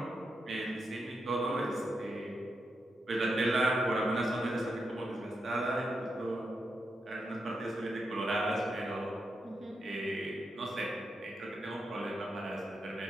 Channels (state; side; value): normal; both; correlation 0.84